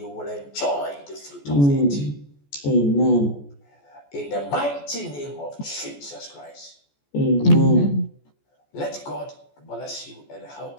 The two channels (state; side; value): late; right; 14 ms